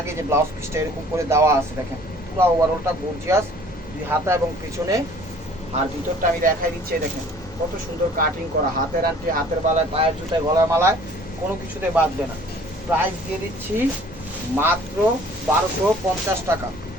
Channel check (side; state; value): both; normal; correlation 0.52